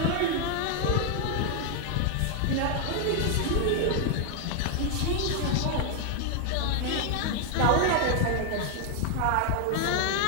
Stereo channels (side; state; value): both; different; correlation 0.00